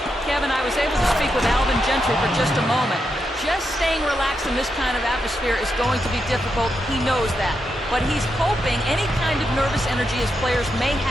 Kevin, I was able to speak with Alvin Gentry for just a moment. Just staying relaxed in this kind of atmosphere is going to be difficult. He knows that. But he's hoping any kind of nervous energy his players may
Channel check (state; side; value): normal; both; correlation 0.84